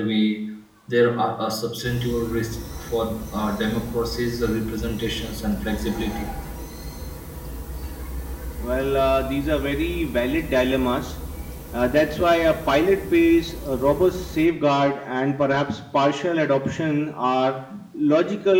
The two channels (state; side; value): identical; both; correlation 1.00